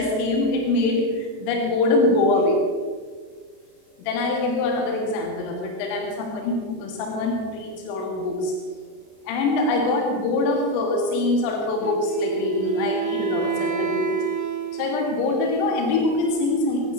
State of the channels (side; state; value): right; late; 32 ms